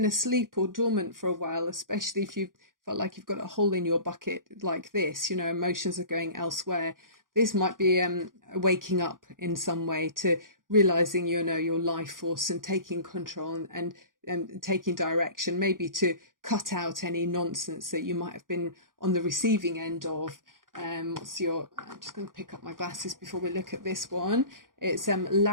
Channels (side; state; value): left; late; 0.90 ms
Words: asleep or dormant for a while, especially if you felt like you've got a hole in your bucket like this, you know, emotions are going elsewhere. This might be waking up in some way to realizing, you know, your life force and taking control and taking direction, maybe to cut out any nonsense that you might have been on the receiving end of. I'm just going to pick up my glasses before we look at this one. It's